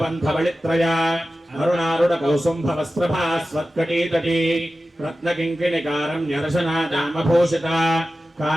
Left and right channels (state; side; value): normal; both; correlation 0.94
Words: बलित्रया अरुणारुण कौसुंभ वस्त्रभास्वत्कटीतटी रत्नकिङ्किणिकारं न्यरशनादामभूषिता